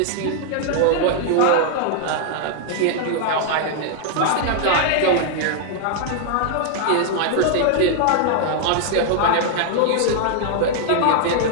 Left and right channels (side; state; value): both; different; correlation 0.00